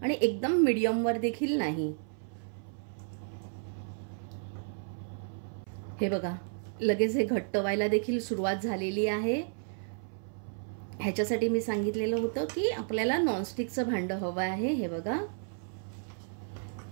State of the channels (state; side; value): silent; left; 56 dB below the other